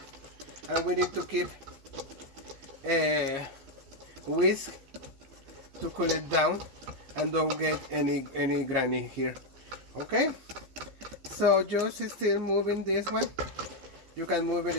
and we need to keep whisk to cool it down and don't get any granny here. Okay, so just still moving this one. You can move it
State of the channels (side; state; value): left; late; 15 ms